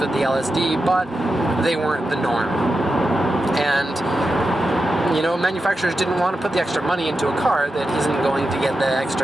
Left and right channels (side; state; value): both; normal; correlation 0.90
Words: the LSD, but they weren't the norm. And, you know, manufacturers didn't want to put the extra money into a car that isn't going to get the